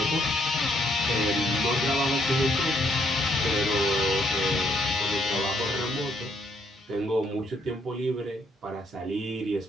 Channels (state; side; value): normal; both; correlation 0.71